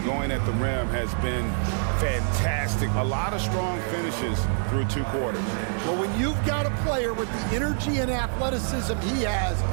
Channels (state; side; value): silent; left; digital silence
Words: going at the rim has been fantastic. A lot of strong finishes through 2 quarters. Well, when you've got a player with the energy and athleticism he has,